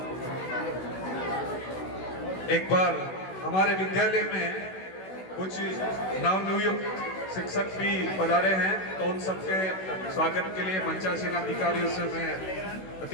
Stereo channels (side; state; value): right; late; 16 ms